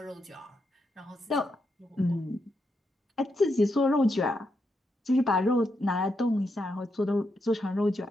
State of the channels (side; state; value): both; normal; correlation 0.82